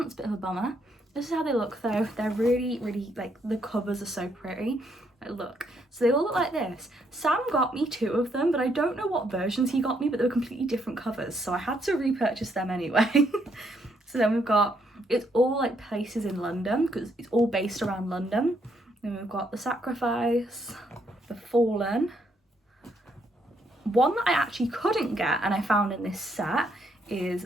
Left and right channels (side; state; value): both; normal; correlation 0.73